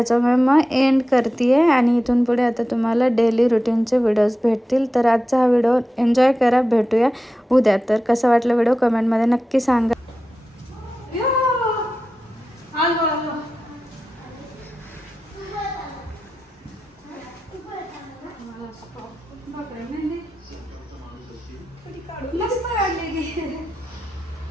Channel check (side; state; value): both; normal; correlation 0.92